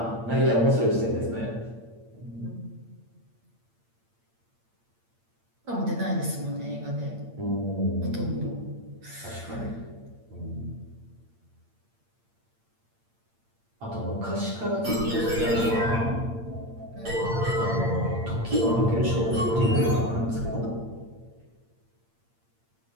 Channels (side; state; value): left; late; 8.7 ms